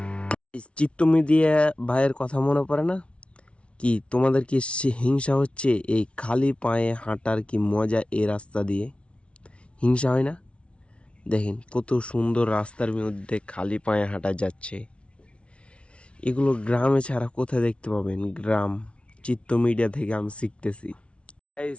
চিত্ত মিডিয়া ভাইয়ের কথা মনে পড়ে না কি তোমাদের কি? হিংসা হচ্ছে এই খালি পায়ে হাঁটার কি মজা এই রাস্তা দিয়ে? হিংসা হয় না? দেখেন কত সুন্দর রাস্তার মধ্যে খালি পায়ে হাঁটা যাচ্ছে। এগুলো গ্রামে ছাড়া কোথায় দেখতে পাবেন? গ্রাম চিত্ত মিডিয়া থেকে আমি শিখতেছি।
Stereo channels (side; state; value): right; late; 0.060 ms